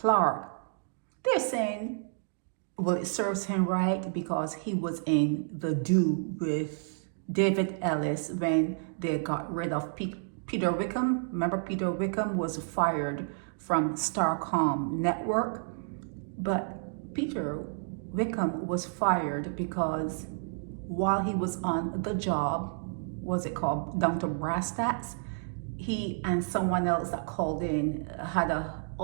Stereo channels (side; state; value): left; silent; digital silence